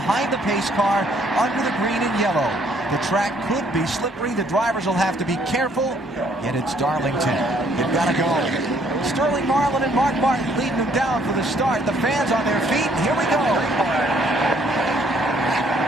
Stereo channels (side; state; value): both; normal; correlation 0.65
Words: the pace car under the green and yellow. The track could be slippery. The drivers will have to be careful. Yet it's Darlington. They've got to go. Sterling Marlin and Mark Martin leading them down for the start. The fans on their feet. Here we go.